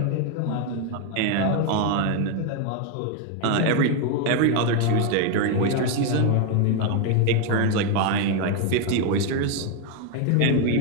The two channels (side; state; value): both; different; correlation 0.01